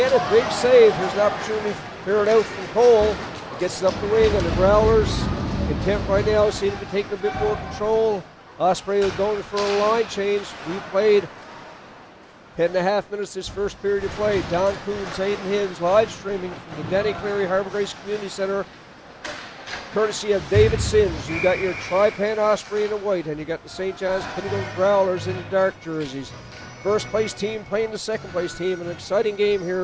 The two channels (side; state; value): both; identical; correlation 1.00